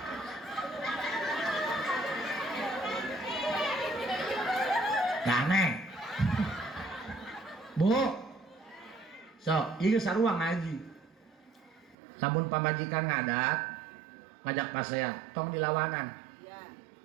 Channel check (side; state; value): left; drops out; at 12.0 s